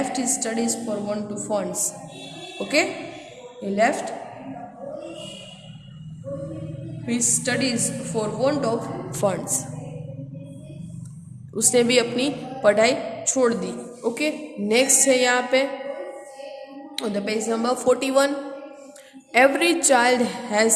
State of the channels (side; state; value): both; identical; correlation 1.00